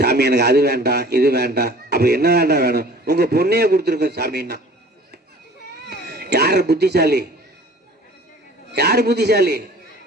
எனக்கு அது வேண்டாம் இது வேண்டாம். அப்ப என்ன வேண்டாம் வேணும்? உங்க பொண்ணையே கொடுத்துருக்க சாமின்னா. யாரு புத்திசாலி? யாரு புத்திசாலி?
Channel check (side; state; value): both; normal; correlation 0.47